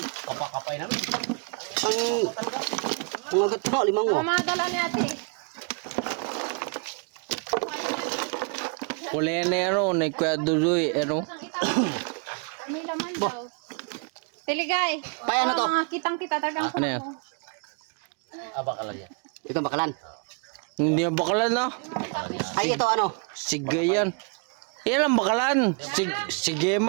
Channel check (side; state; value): left; quieter; 37.3 dB